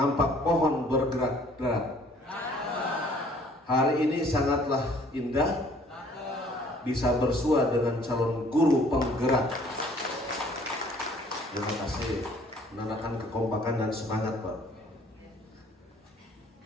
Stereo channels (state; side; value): normal; both; correlation 0.57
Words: pohon bergerak-gerak. Hari ini sangatlah indah, bisa bersua dengan calon guru penggerak. Terima kasih, menandakan kekompakan dan semangat, Pak.